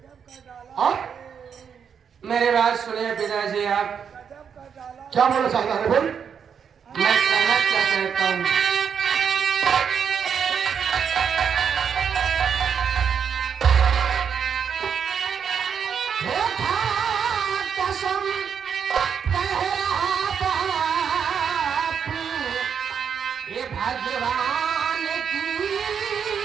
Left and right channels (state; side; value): quieter; left; 7.3 dB